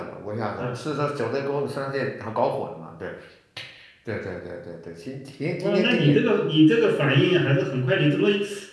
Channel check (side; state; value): both; identical; correlation 1.00